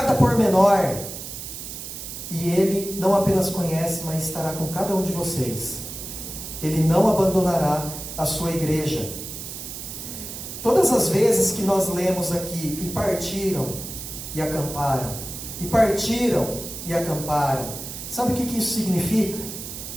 pormenor, e Ele não apenas conhece, mas estará com cada um de vocês. Ele não abandonará a sua igreja. Todas as vezes que nós lemos aqui, e partiram e acamparam, e partiram e acamparam, sabe o que isso significa?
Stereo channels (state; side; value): noise; right; hiss, 9 dB below the sound